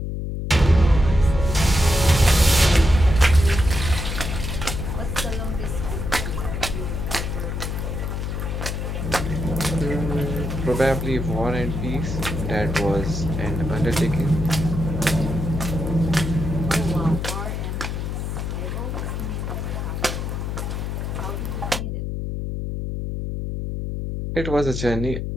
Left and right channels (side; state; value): left; noise; hum, 3 dB below the sound